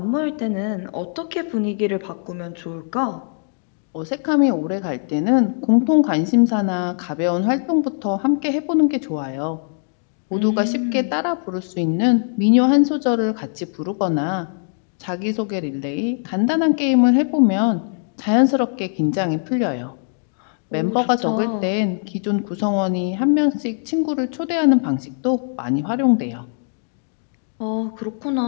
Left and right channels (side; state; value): right; silent; 61 dB below the other